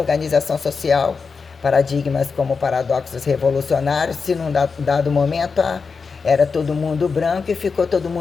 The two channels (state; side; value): quieter; right; 5.0 dB